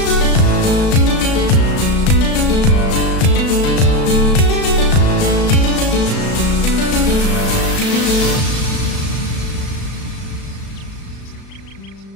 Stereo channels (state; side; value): late; right; 35 ms